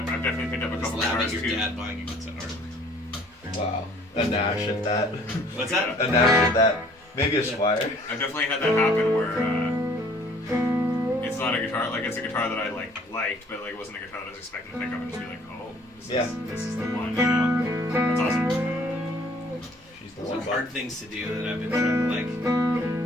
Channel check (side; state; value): both; normal; correlation 0.56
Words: definitely picked up a Just couple laughing guitars at too. your dad buying a guitar. Wow. A Nash at that. What's that? A Nash at that. Maybe a Squire. I've definitely had that happen where it's not a guitar, like it's a guitar that I liked, but like it wasn't a guitar that I was expecting to pick up and just be like, oh, this is the one, you know? That's awesome. She's the Those one. are hard things to do that I've been trying to like.